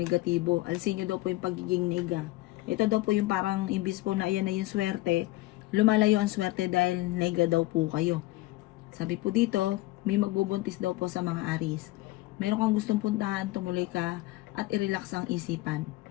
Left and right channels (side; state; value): right; quieter; 18.9 dB